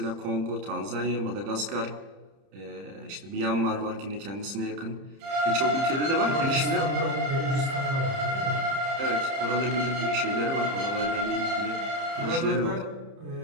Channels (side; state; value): left; late; 30 ms